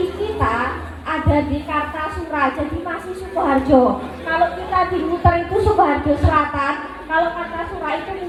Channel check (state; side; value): identical; both; correlation 1.00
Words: kita ada di Kartasura, jadi masih Sukoharjo. Kalau kita di Muter itu Sukoharjo Selatan, kalau Kartasura itu